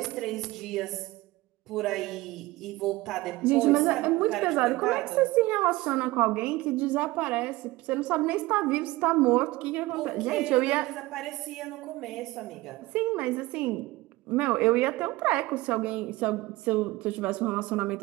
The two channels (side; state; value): left; quieter; 19.7 dB